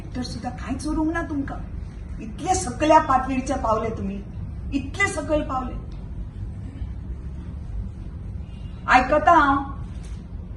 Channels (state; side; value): identical; both; correlation 1.00